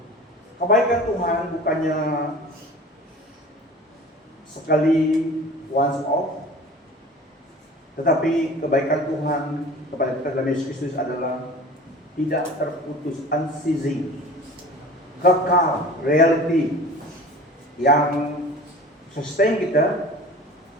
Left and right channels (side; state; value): both; normal; correlation 0.41